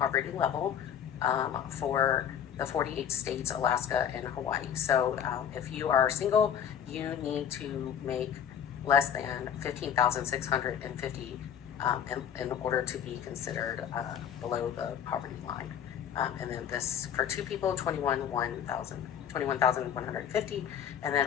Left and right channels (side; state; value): right; quieter; 8.9 dB